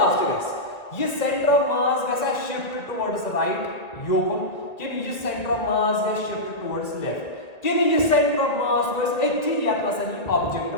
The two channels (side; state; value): right; late; 1.7 ms